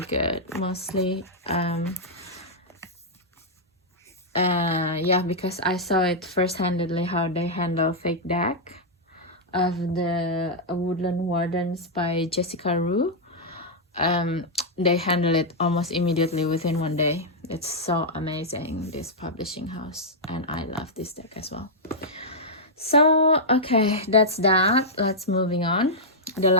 good, mostly yeah, because I saw it first-handedly how they handle fake deck of the Woodland Wardens by Jessica Rue. They handle it almost immediately, within 1 day. It's so amazing, this publishing house, and I love this deck as well. So okay, that's that. Let's moving on. The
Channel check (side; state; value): both; normal; correlation -0.07